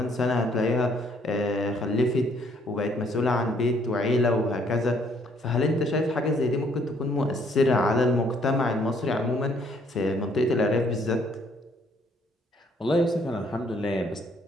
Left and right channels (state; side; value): normal; both; correlation 0.65